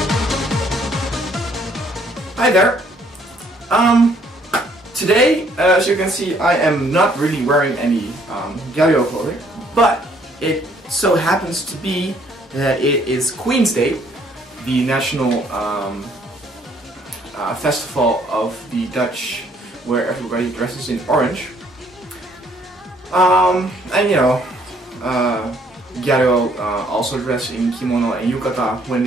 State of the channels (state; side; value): normal; both; correlation 0.64